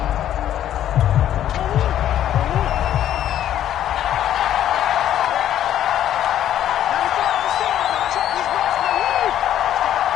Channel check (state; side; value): quieter; right; 11.3 dB